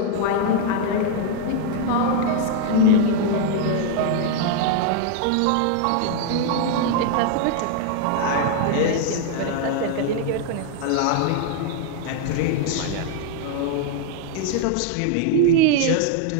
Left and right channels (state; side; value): different; both; correlation 0.00